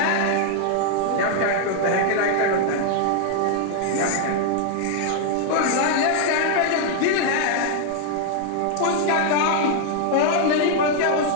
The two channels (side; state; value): both; different; correlation 0.00